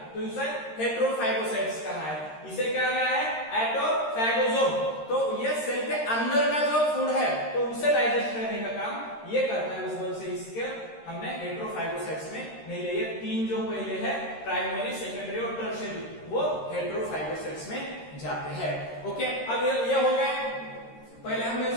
तो इसे हेटेरोफैगोसाइट्स कहा है। इसे क्या कहा है, एटोफैगोसोम। तो ये सेल के अंदर का जो फूड है तो उसे डाइजेस्ट करने का काम ये करता है, उस वजह से इसके हमने हेटेरोफैगोसाइट्स में नहीं लिए। 3 जो पहले है, प्राइमरी, सेकेंडरी और टर्शियरी, वो हेटेरोफैगोसाइट्स में जाते हैं। ओके, अब ये हो गए, पहले हमने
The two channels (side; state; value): right; late; 13 ms